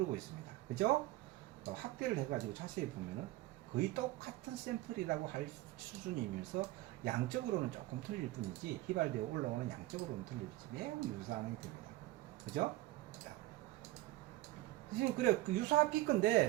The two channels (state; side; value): quieter; left; 17.4 dB